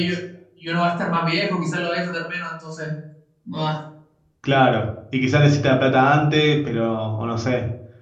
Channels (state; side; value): identical; both; correlation 1.00